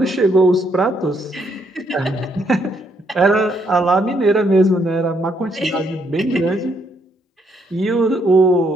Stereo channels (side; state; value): both; normal; correlation 0.73